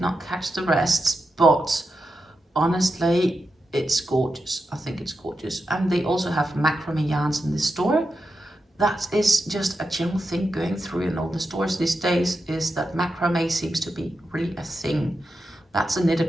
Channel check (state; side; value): normal; both; correlation 0.88